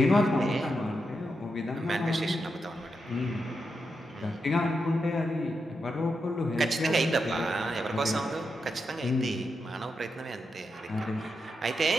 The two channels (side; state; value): both; normal; correlation 0.85